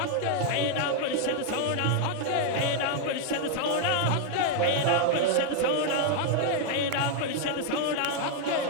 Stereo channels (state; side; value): different; both; correlation 0.00